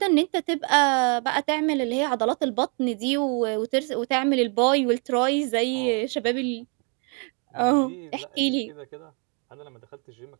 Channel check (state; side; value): quieter; left; 37.9 dB